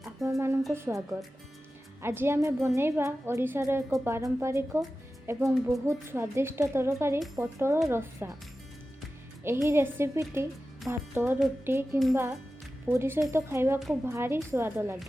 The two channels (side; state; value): both; normal; correlation 0.94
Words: आपण मानक स्वागत। आज आम बनैबा ओडिशार एक पारंपरिक एवं बहुत स्वादिष्ट तरकारी पटल रसा। एही रेसिपीटी भात रुटी किंबा पूरी सहित खाइबा को भारी स्वाद